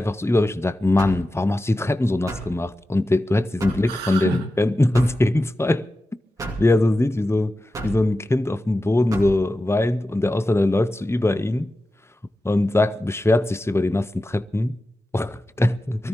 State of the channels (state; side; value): normal; both; correlation 0.93